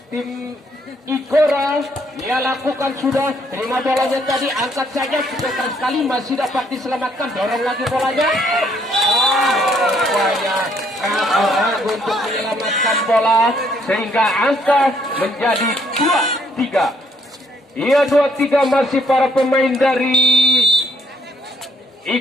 tim Igora. Ia lakukan sudah, terima bolanya tadi, angkat saja, cepat sekali, masih dapat diselamatkan, dorong lagi bolanya. Rupanya ragu untuk menyelamatkan bola, sehingga angka menjadi 2-3. Iya, 2-3, masih para pemain dari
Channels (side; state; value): both; normal; correlation 0.67